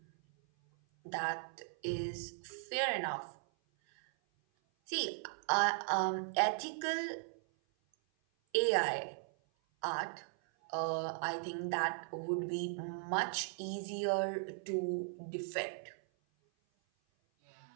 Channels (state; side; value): silent; left; 52 dB below the other